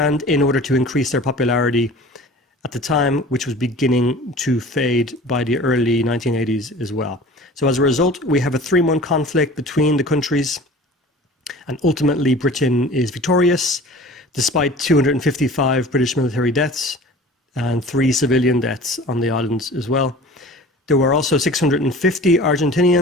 in order to increase their popularity at the time, which was beginning to fade by the early 1980s as well. So as a result, we have a 3-month conflict between the countries, and ultimately Britain is victorious, despite 255 British military deaths and 3 civilian deaths on the islands as well. There were also 650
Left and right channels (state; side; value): normal; both; correlation 0.42